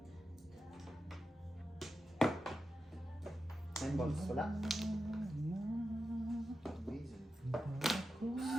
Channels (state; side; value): normal; both; correlation 0.90